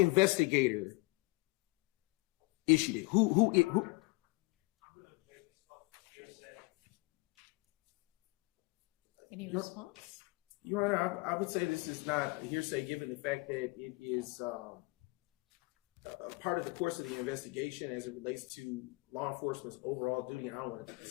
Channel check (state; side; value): quieter; right; 25.3 dB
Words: issued it? Who? Any response? Your Honor, I would say this is not hearsay, given the fact that it is part of the course of the investigation as it relates to law enforcement's overall duty. And I don't want to